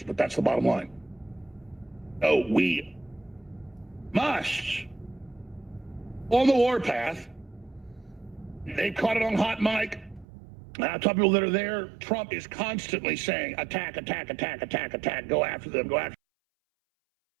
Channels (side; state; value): left; drops out; at 10.2 s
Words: but that's the bottom line. Oh, we must, on the warpath, they've caught it on hot mic. I tell people that are there, Trump is constantly saying, attack, attack, attack, attack, attack, go after them, go after